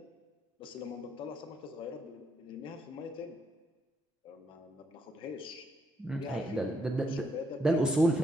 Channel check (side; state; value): both; normal; correlation 0.76